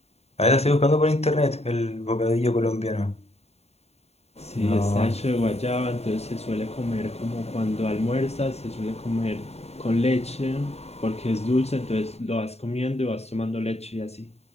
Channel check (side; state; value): right; late; 0.30 ms